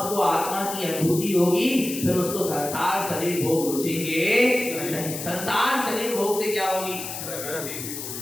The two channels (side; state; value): left; noise; hiss, 7 dB below the sound